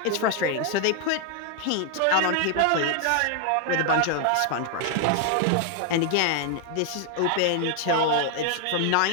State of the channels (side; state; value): both; different; correlation 0.00